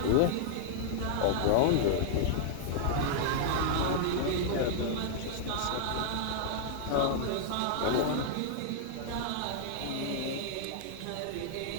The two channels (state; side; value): different; both; correlation -0.01